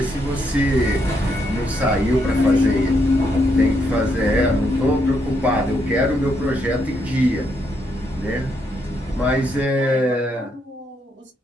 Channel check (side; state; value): both; normal; correlation 0.77